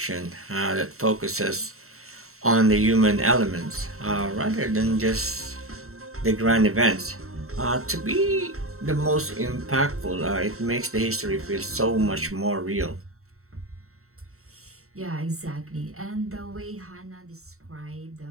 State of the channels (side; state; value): left; late; 0.63 ms